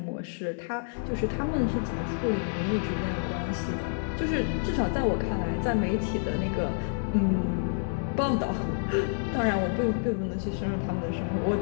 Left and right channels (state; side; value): silent; right; digital silence